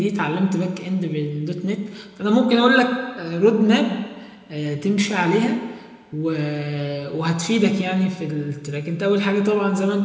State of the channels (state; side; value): identical; both; correlation 1.00